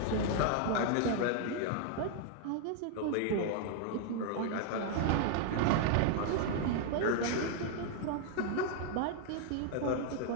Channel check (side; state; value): both; different; correlation 0.00